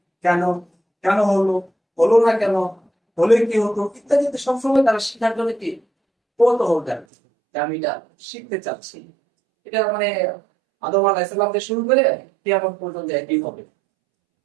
কেন, কেন হলো, হলো না কেন, হলে কি হতো ইত্যাদি সবসময় তারা শিখার জন্য কি কৌতূহল থাকে যে আমি এটা শিখতে চাচ্ছি। এটা মানে আদম আলাইহিস সালাম থেকে শুরু করে কিয়ামত পর্যন্ত একই হবে।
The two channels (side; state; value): left; drops out; at 7.1 s